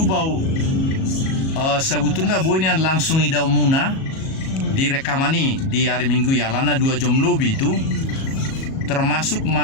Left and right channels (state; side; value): late; right; 37 ms